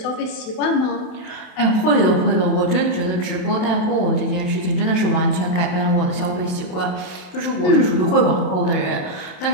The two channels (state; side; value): late; right; 28 ms